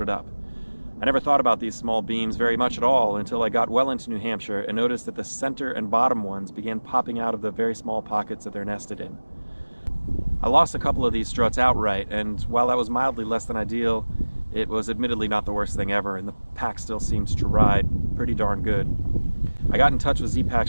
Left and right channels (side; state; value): both; inverted; correlation -1.00